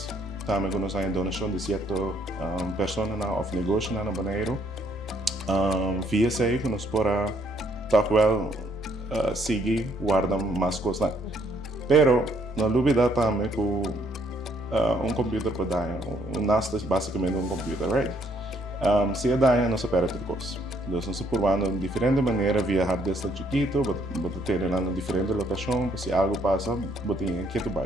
também nós temos donação de 7 pessoas ou negócio na banheiro, via sei que nós podemos, toch wel, seguir guardar mais coisas. Pero não dúvida também que computer para dar, NAS é basicamente computer, right? Se é dar, não se perde turcos. Então, nós provando de diferente maneira viajar desde chiquito, botar ter em diferente locação, se algo passa, botar em que tu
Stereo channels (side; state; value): both; normal; correlation 0.68